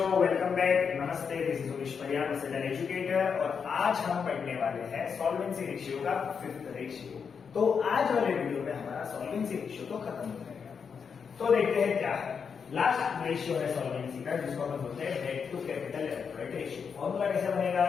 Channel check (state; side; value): quieter; right; 6.3 dB